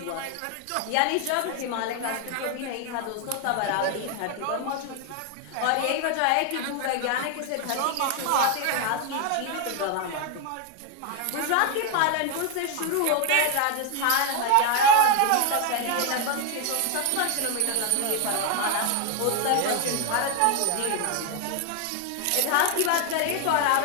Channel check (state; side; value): different; both; correlation 0.01